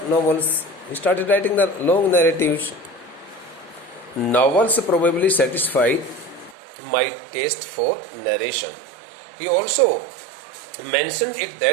novels. He started writing the long narratives. Novels probably satisfied my taste for narration. He also mentioned it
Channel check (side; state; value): left; drops out; at 6.6 s